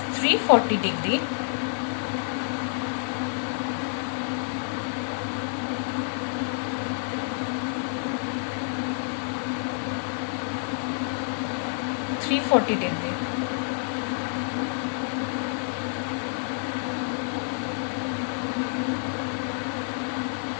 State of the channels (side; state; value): right; silent; 59 dB below the other